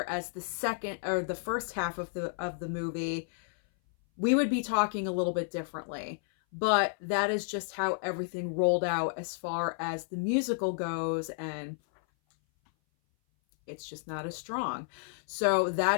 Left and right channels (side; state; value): right; silent; 57 dB below the other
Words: as the first half of the movie, we would be talking a little bit differently. But that is just how everything rolled out as far as the musical goes, and it's just not as strong. So